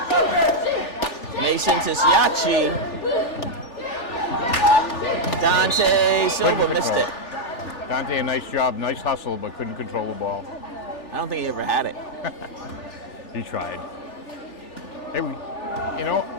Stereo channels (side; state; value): right; late; 3.4 ms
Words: Mason to Siachi. Dante Silva Couldn't missed control. it. Dante, a nice job, nice hustle, but couldn't control the ball. I don't think he ever had it. He tried. Hey, you know,